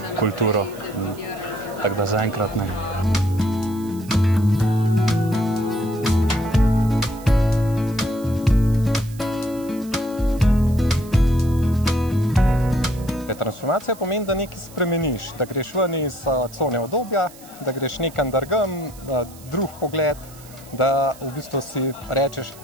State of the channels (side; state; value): right; noise; hiss, 21 dB below the sound